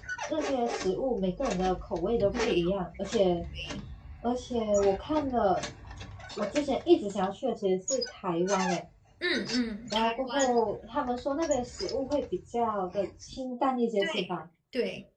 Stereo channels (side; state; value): both; identical; correlation 1.00